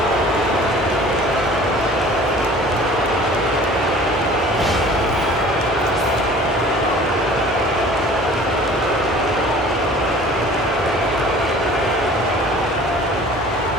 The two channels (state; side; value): normal; both; correlation 0.47